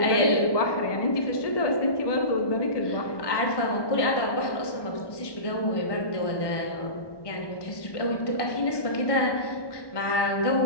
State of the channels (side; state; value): right; late; 1.2 ms